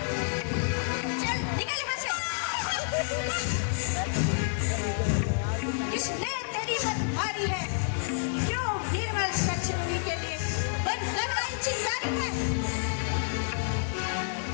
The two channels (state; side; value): silent; right; 58 dB below the other